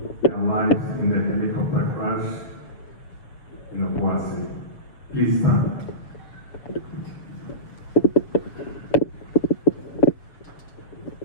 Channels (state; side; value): late; right; 7.0 ms